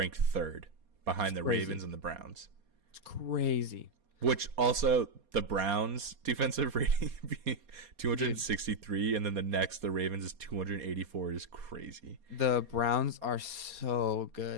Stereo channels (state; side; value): late; left; 4.2 ms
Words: third behind the Crazy. Ravens and the Browns. It's crazy. Which also the Browns defensive rating being 263, and then the next the Ravens is 284 is crazy. The Browns are so